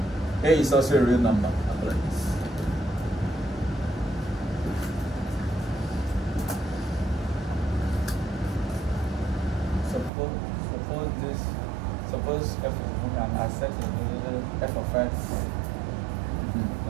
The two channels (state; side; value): drops out; left; at 10.1 s